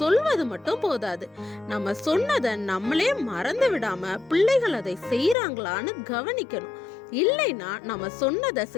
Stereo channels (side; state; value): right; drops out; at 5.4 s